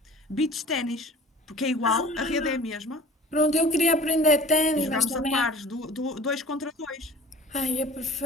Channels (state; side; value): normal; both; correlation 0.43